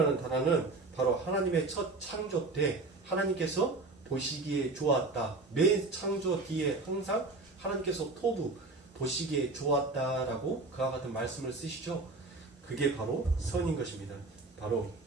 단어는 바로 하나님의 첫 창조 때 하나님께서 보시기에 좋았다. 맨 창조 뒤에 항상 하나님께서 토부 보시기에 좋았다라고 그와 같은 말씀을 쓰시죠. 그게 바로 선인 것입니다. 바로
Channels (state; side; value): quieter; left; 3.4 dB